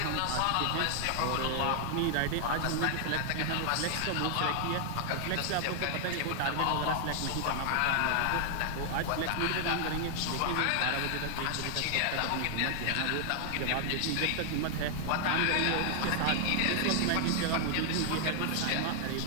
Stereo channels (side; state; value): both; different; correlation 0.00